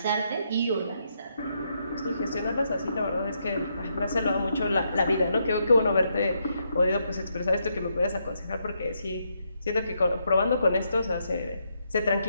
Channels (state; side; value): inverted; both; correlation -0.78